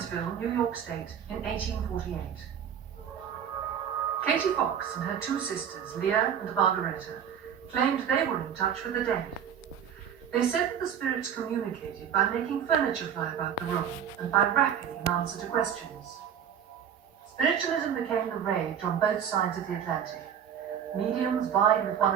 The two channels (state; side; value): quieter; left; 8.6 dB